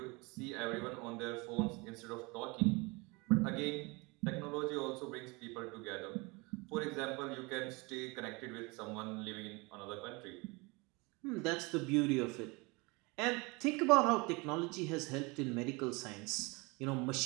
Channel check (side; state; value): left; quieter; 26.7 dB